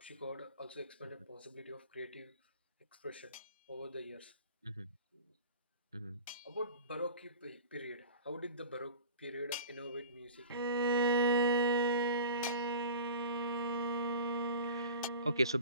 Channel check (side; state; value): both; inverted; correlation -0.40